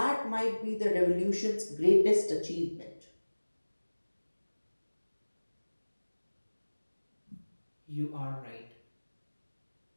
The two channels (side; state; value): both; inverted; correlation -1.00